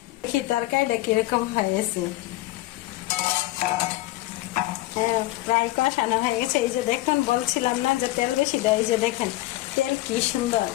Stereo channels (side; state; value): right; quieter; 17.6 dB